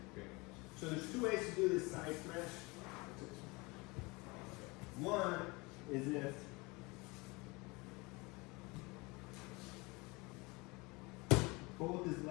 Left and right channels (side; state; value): right; quieter; 25.5 dB